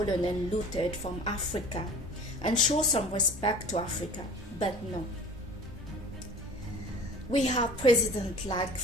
and looted from Africa, and show some respect to Africa. But no, We have president like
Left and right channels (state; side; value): normal; both; correlation 0.43